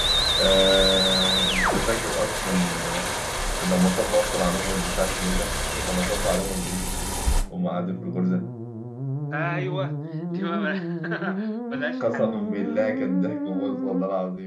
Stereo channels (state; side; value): identical; both; correlation 1.00